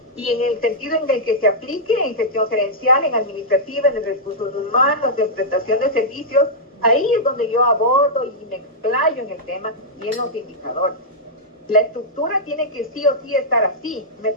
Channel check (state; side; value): normal; both; correlation -0.09